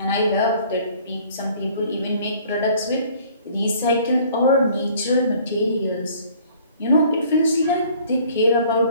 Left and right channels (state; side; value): inverted; both; correlation -0.54